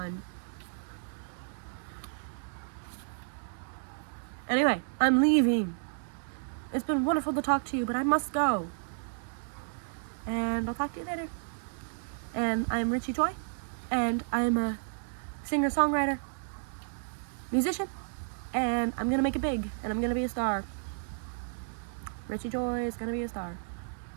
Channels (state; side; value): silent; left; digital silence